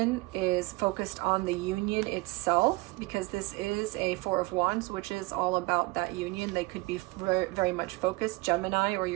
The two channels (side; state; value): left; quieter; 23.9 dB